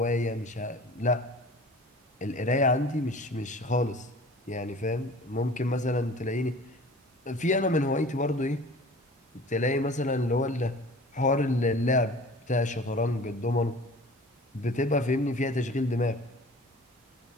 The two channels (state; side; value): normal; both; correlation 0.43